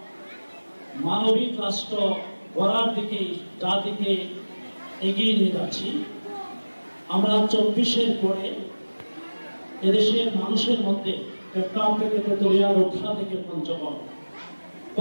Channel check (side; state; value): both; inverted; correlation -1.00